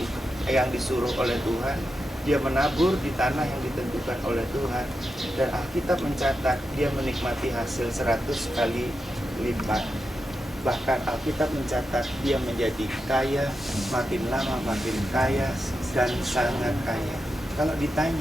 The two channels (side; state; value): both; normal; correlation 0.88